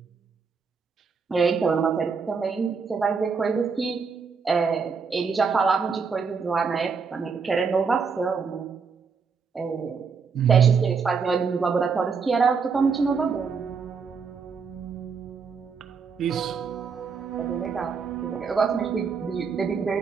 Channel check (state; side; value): quieter; left; 5.5 dB